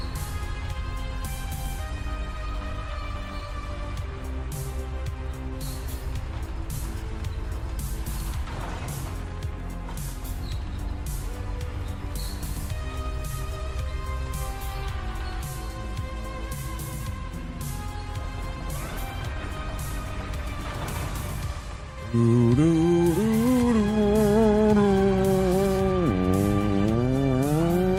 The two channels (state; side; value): identical; both; correlation 1.00